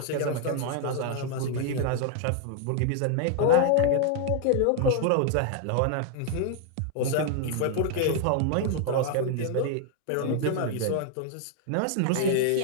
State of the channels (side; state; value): both; different; correlation 0.00